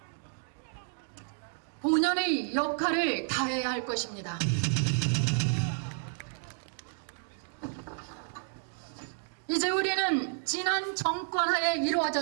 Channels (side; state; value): left; silent; digital silence